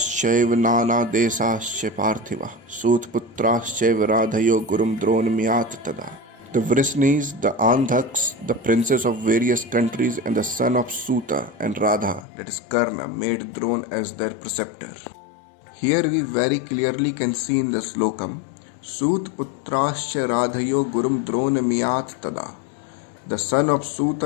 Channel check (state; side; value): drops out; right; at 12.2 s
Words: नानादेशाश्च पार्थिवः सूतपुत्राश्चैव राधयो गुरुं द्रोणमियात् तदा. The Vrishnis, the Andhaks, the princes of various countries and the son of Suta and Radha, that is Karna, made Drona as their preceptor. Here we very clearly can see in the slokam, Sutputrascha Radhayo Gurum Drona Miyat Tada. The son of Suta